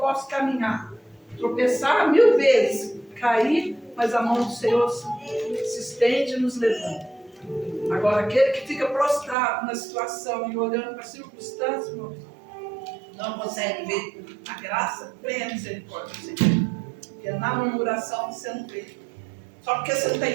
caminhar, tropeçar 1000 vezes, cair, mas a mão do Senhor se estende e nos levanta. Agora, aquele que fica prostrado na situação e olhando para a circunstância, irmãos, não consegue ver a graça, vem a misericórdia do Senhor. Porque na murmuração você não vê. Só porque você não está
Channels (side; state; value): left; drops out; at 9.3 s